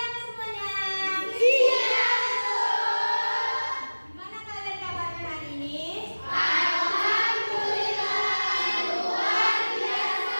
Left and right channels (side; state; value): both; inverted; correlation -1.00